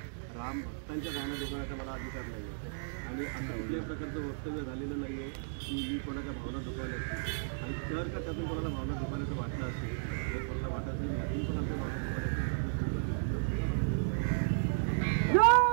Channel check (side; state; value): left; silent; digital silence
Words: राम भक्तांच्या भावना दुखवण्याचा मला अधिकार नाही. आणि असं कुठल्याही प्रकारचं वक्तव्य झालेलं नाही आहे की मी कोणाच्या भावना दुखवल्या. आणि जर का त्यातून कोणाला भावना दुखवल्याचं वाटलं असेल तर कोणाला वाटत नाही त्यातून पण आमच्या भावना